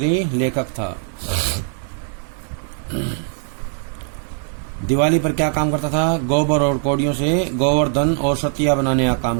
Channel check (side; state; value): left; silent; 61 dB below the other